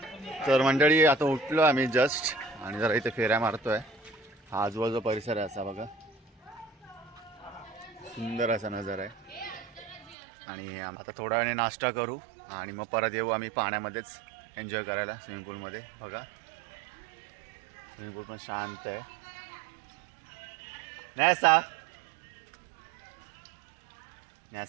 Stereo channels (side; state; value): left; drops out; at 10.2 s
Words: तर मंडळी आता उठलो आम्ही जस्ट आणि जरा इथे फेऱ्या मारतोय हा आजूबाजू परिसर आहे असा बघा सुंदर असा नजारा आहे आणि आता थोड्या वेळाने नाश्ता करू आणि मग परत येऊ आम्ही पाण्यामध्येच एन्जॉय करायला स्विमिंग पूलमध्ये बघा स्विमिंग पूल पण शांत आहे